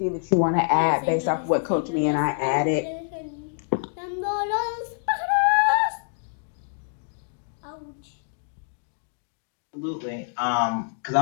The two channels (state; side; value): silent; right; digital silence